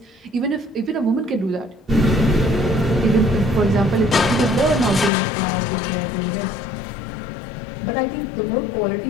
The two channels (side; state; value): right; drops out; at 5.1 s